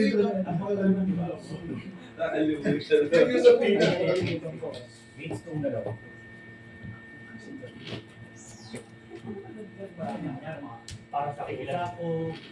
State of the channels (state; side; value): identical; both; correlation 1.00